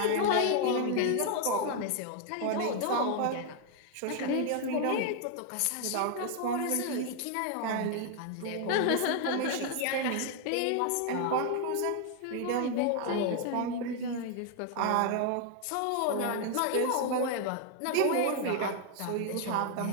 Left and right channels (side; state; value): both; different; correlation 0.00